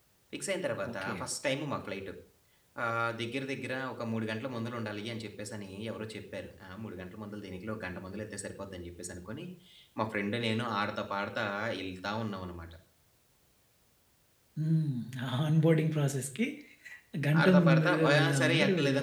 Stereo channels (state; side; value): identical; both; correlation 1.00